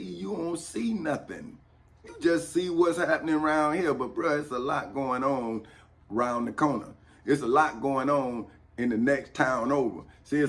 You don't see nothing. You just see what's happening around here. But bro, it's a lot going on around the corner. It's a lot going on in the next town over. See,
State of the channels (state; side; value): identical; both; correlation 1.00